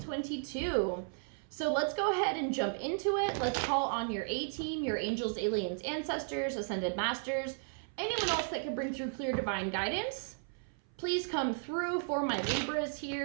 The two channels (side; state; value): left; silent; 55 dB below the other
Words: So let's go ahead and jump into it. Let's call on your A-team, your angels, aliens, ancestors, ascended masters, anyone else that can bring through clear divine guidance. Please come through for my Libras